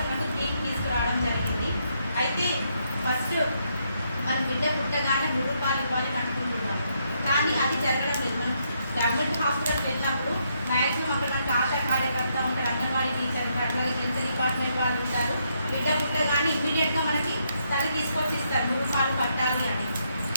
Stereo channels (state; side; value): inverted; both; correlation -0.76